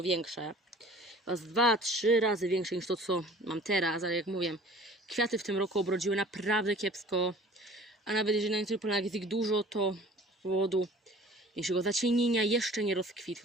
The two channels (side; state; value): both; normal; correlation 0.48